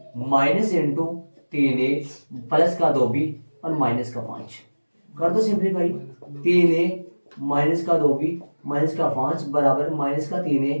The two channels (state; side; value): inverted; both; correlation -1.00